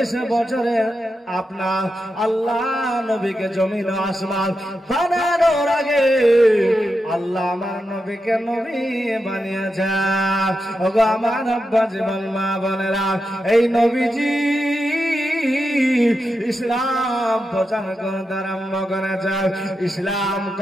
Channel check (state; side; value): normal; both; correlation 0.88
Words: বছরের আপনার আল্লাহ নবীকে জমিন আসমান বানানোর আগে আল্লাহ আমার নবীকে নবী বানিয়েছেন। ওগো আমার আব্বা জীবন মা বোনেরা, এই নবীজি ইসলাম প্রচার করতে আরম্ভ করেছে। ইসলাম